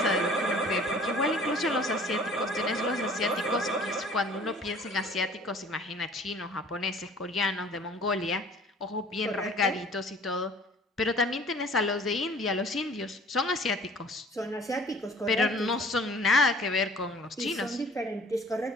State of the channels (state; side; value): normal; both; correlation 0.50